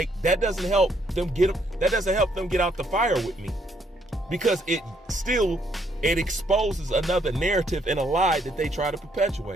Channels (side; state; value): both; normal; correlation 0.70